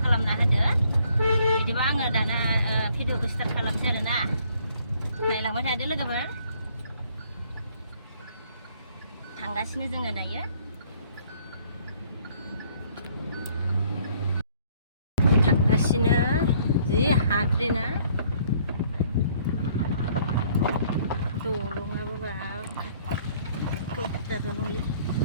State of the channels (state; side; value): inverted; both; correlation -0.63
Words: खालामना होदो बिदिबा आङो दाना भिडिअखौ स्टार्ट खालामसै आरोना नायलांबाय थादो लोगोफोर थांगासिनो जोङो दायो थांगासिनो जि हाद्रिना दलङाबो बाब खैथासो नंलै